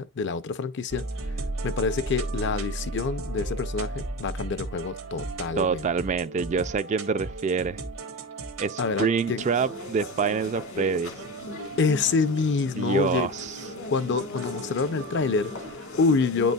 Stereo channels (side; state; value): both; normal; correlation 0.25